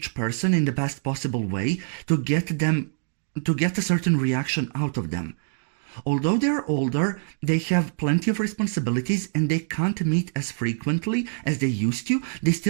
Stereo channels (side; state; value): left; silent; digital silence